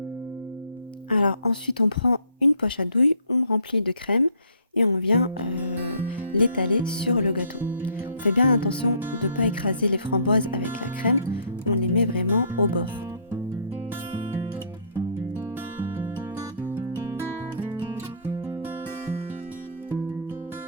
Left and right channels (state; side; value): inverted; both; correlation -0.59